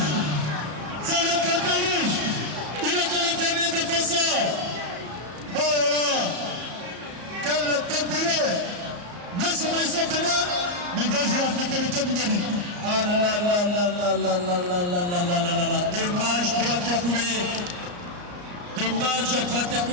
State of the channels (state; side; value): late; left; 34 ms